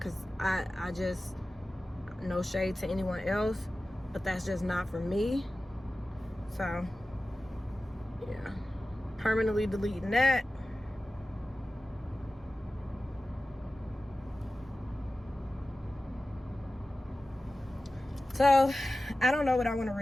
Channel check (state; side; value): normal; both; correlation 0.95